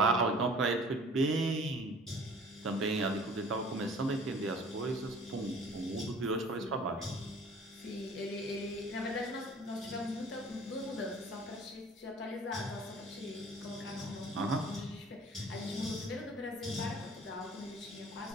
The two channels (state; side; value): normal; both; correlation 0.49